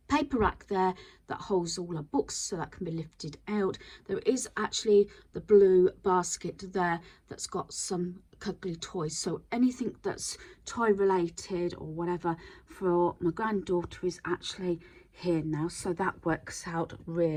paper rack there that holds all our books, so that can be lifted out. There is actually the blue basket there that's got some cuddly toys, so anything that's toy related or whatever for my granddaughter is actually here now, so that works out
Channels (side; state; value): both; identical; correlation 1.00